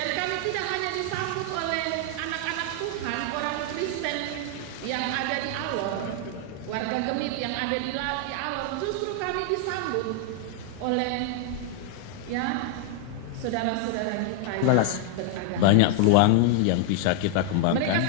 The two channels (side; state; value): both; different; correlation 0.00